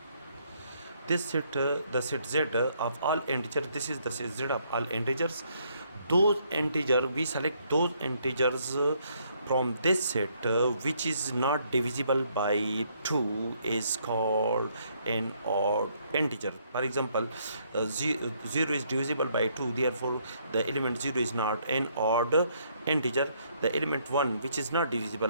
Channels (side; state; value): both; inverted; correlation -0.70